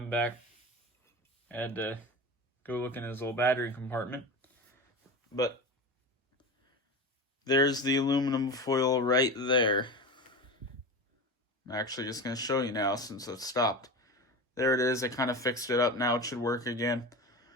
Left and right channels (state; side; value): normal; both; correlation 0.27